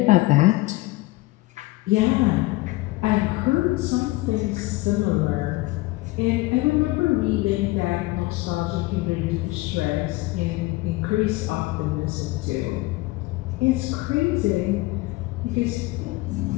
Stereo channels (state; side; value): quieter; right; 20.6 dB